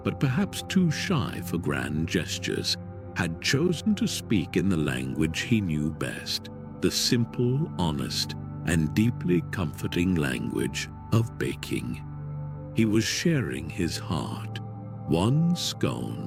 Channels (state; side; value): identical; both; correlation 1.00